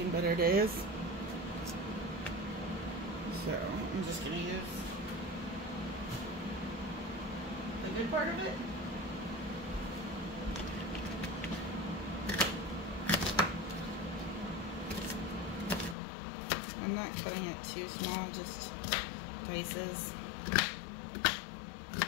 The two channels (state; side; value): drops out; right; at 16.0 s